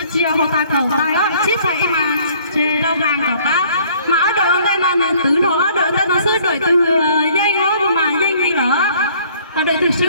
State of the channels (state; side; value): inverted; both; correlation -0.58